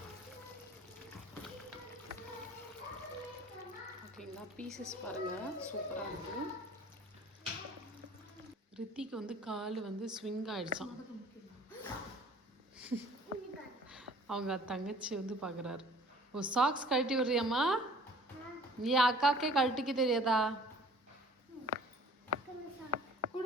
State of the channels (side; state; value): both; normal; correlation 0.51